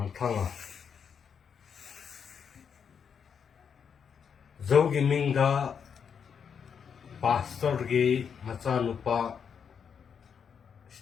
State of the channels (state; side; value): quieter; right; 7.0 dB